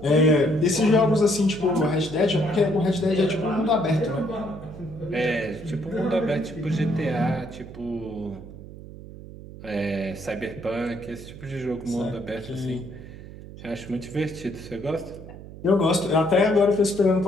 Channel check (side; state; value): right; noise; hum, 15 dB below the sound